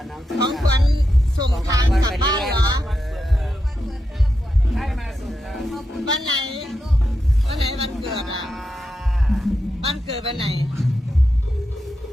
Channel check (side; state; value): both; normal; correlation 0.87